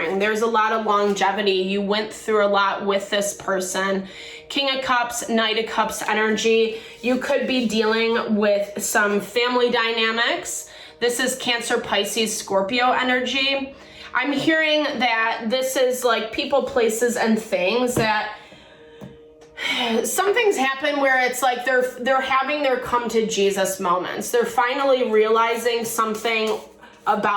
there's a lot of longevity. You went through a lot with this person. King of Cups, Knight of Cups energy. You could be dealing with some family dynamics. This is Cancer, Pisces, Scorpio energy. I'm hearing that this is like people, places, and things that some things happen where it's like they're having their come to Jesus moments. They're finally realizing something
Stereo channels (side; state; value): both; identical; correlation 1.00